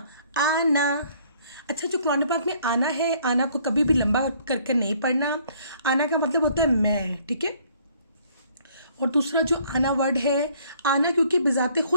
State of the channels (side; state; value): both; inverted; correlation -0.61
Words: आना। अच्छा जो कुरान पाक में आना है, आना को कभी भी लंबा करके नहीं पढ़ना। आना का मतलब होता है मैं। ठीक है, और दूसरा जो आना वर्ड है, आना क्योंकि बिज़ाते